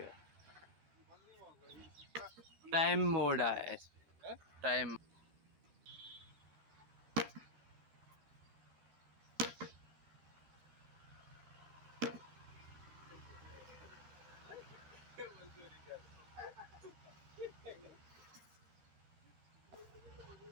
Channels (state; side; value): late; left; 12 ms